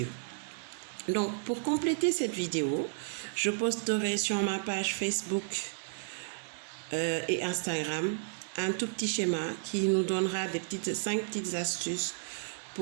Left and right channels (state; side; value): silent; left; 56 dB below the other